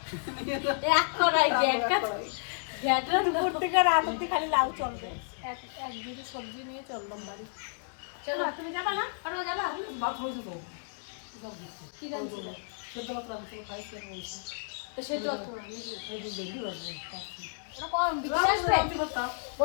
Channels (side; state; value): right; silent; digital silence